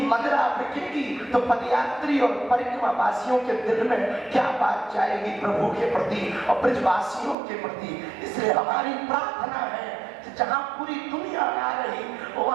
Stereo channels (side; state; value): left; drops out; at 7.4 s